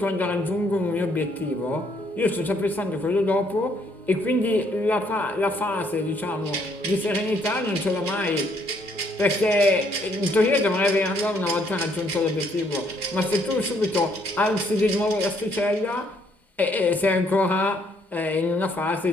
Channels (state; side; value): normal; both; correlation 0.68